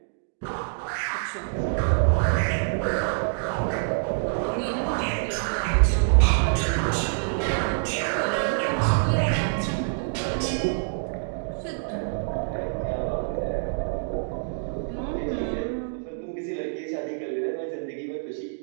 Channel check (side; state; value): left; silent; digital silence